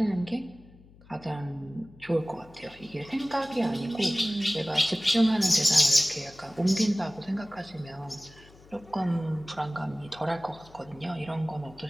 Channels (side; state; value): left; noise; hum, 24 dB below the sound